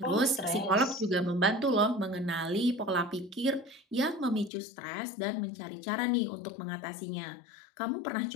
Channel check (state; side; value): drops out; right; at 4.5 s